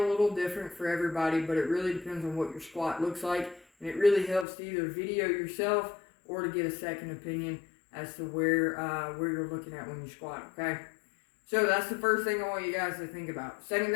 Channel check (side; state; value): right; drops out; at 4.5 s